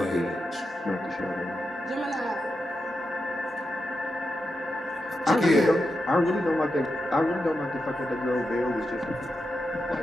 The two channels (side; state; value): both; normal; correlation 0.87